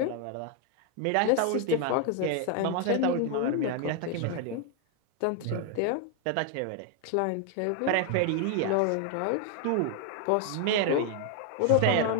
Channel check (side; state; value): both; different; correlation 0.00